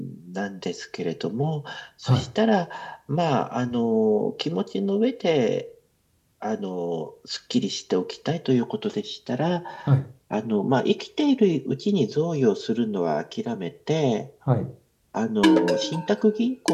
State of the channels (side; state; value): both; identical; correlation 1.00